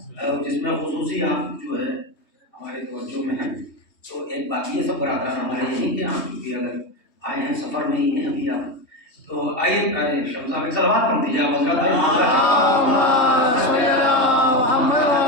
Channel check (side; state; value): right; late; 3.2 ms